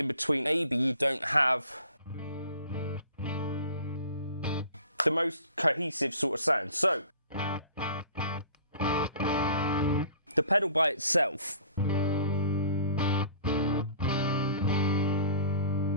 between, maybe you don't have the most cohesive sort of sound. So the pedal by itself,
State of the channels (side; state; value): both; inverted; correlation -0.48